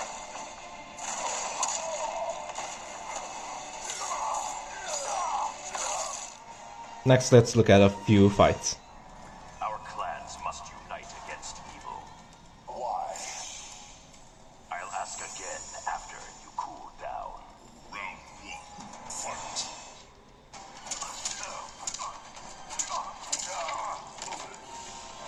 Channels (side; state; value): both; identical; correlation 1.00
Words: Next, let's look at a few fights. Our clans must unite against evil. Why? I'll ask again after you cool down. Round one, fight.